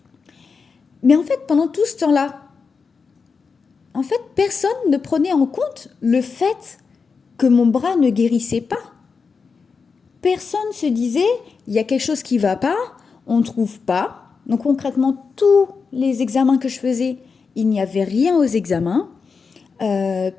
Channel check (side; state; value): right; quieter; 5.1 dB